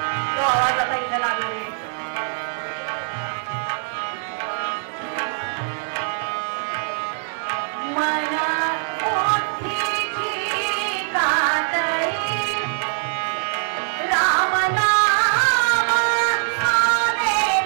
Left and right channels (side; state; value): left; silent; 64 dB below the other